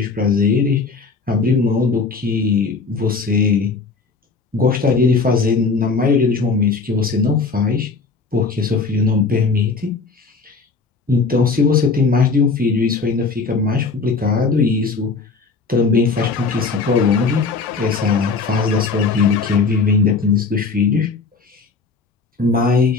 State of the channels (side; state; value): right; quieter; 4.4 dB